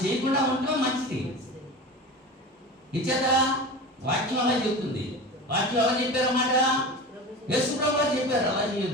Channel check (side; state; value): both; normal; correlation 0.31